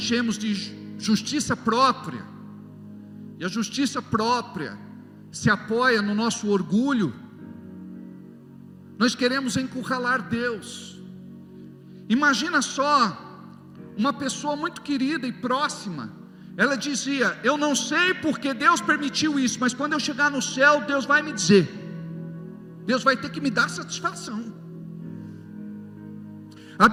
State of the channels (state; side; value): identical; both; correlation 1.00